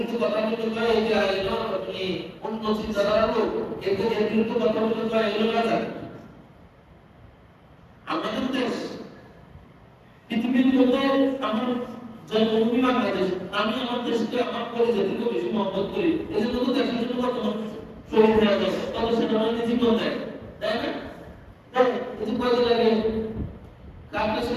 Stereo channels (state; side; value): identical; both; correlation 1.00